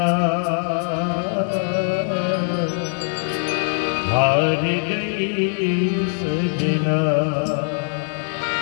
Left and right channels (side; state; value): right; silent; 65 dB below the other